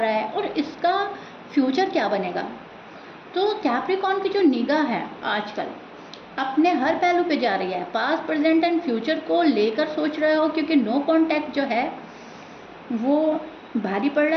है और इसका फ्यूचर क्या बनेगा। तो कैप्रिकॉर्न की जो निगाह है आजकल अपने हर पहलू पे जा रही है, पास्ट प्रेजेंट एंड फ्यूचर को लेकर सोच रहे हो, क्योंकि नो कॉन्टैक्ट जो है वो भारी पड़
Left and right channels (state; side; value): identical; both; correlation 1.00